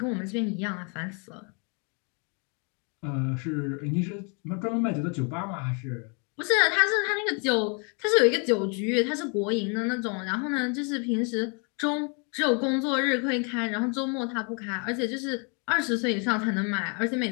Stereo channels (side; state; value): right; quieter; 36.2 dB